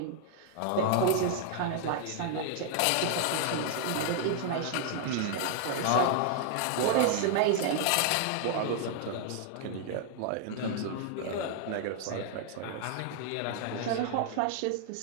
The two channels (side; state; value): both; different; correlation 0.00